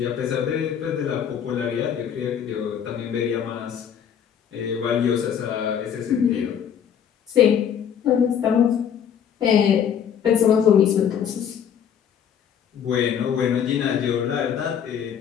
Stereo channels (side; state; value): right; quieter; 8.4 dB